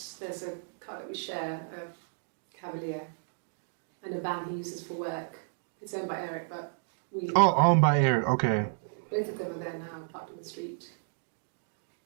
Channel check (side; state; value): left; silent; digital silence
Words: there's a car that we share, a Cavalier, and a van he uses for work. It's owned by Eric, but we... Oh, owned by Eric, okay. Both of them are there now, parked in the street.